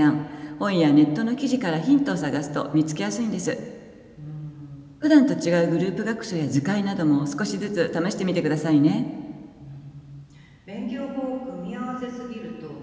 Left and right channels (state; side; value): identical; both; correlation 1.00